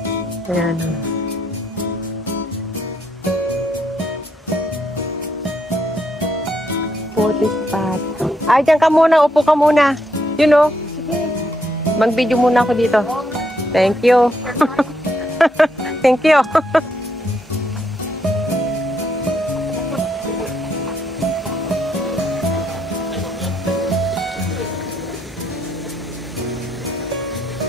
Ayan o. Photo spot. Ay, dyan ka muna. Upo ka muna. You know. Mag-video muna ako dito. Thank you. Thank you.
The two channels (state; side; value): normal; both; correlation 0.75